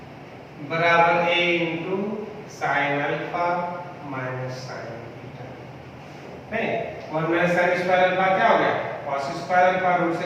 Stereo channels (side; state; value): both; identical; correlation 1.00